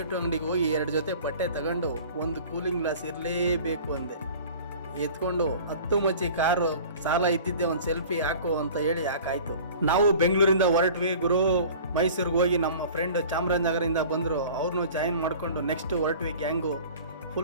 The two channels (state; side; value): inverted; both; correlation -0.44